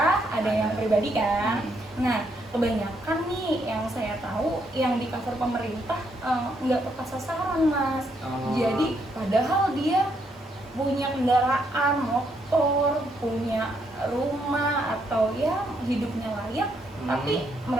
ada yang pribadi kan. Nah, kebanyakan nih yang saya tahu yang di cover pemerintah nggak tepat sasaran Mas. Jadi padahal dia punya kendaraan, motor, punya rumah, atau ya hidupnya layak, tapi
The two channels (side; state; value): both; normal; correlation 0.74